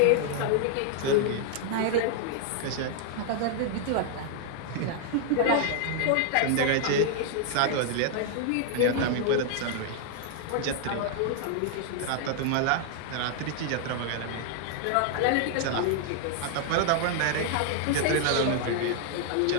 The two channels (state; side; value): different; both; correlation 0.00